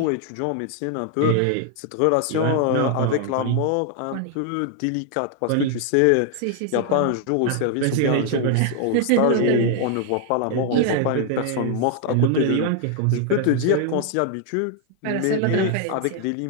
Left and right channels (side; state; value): both; different; correlation 0.00